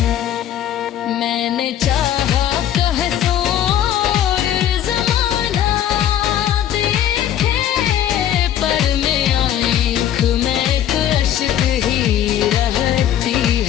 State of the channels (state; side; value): quieter; right; 10.8 dB